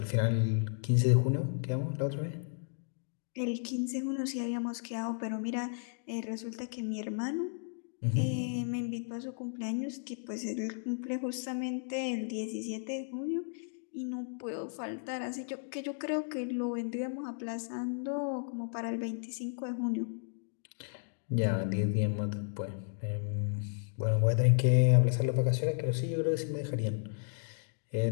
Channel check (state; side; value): silent; right; digital silence